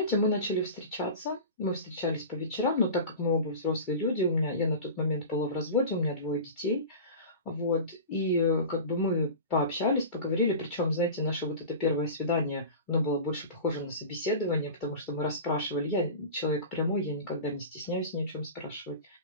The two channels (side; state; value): both; inverted; correlation -0.33